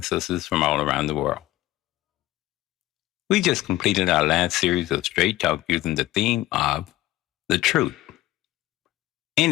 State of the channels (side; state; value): right; quieter; 16.2 dB